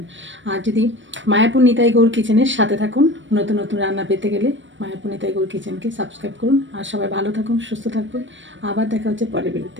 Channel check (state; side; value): late; left; 0.55 ms